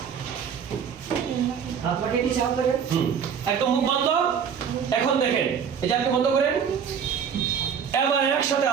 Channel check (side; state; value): left; quieter; 7.3 dB